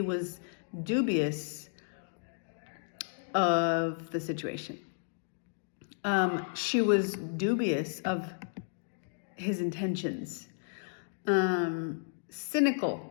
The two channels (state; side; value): silent; right; digital silence